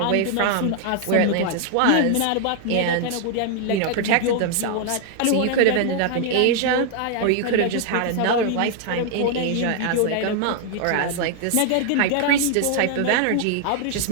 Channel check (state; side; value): different; both; correlation 0.00